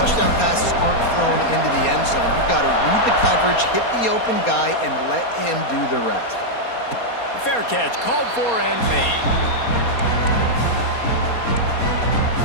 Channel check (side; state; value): right; late; 4.2 ms